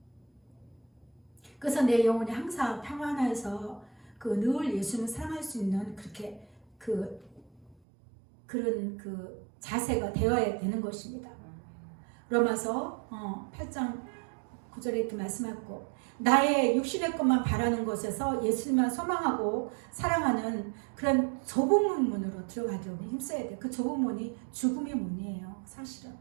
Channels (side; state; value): left; drops out; at 7.8 s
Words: 그래서 내 영혼이 항상 평안해서 늘 예수님을 사랑할 수 있는 그런 자세가 되어야 되는 것입니다. 로마서 8장 9절에 이렇게 말씀하고 나의 육신의 것만 바라는 것에서 예수님만 소망하고 사랑하는 그런 좁은 문으로 들어가려고 힘써야 돼요. 그 좁은 문이 죽음의 문이에요. 사실은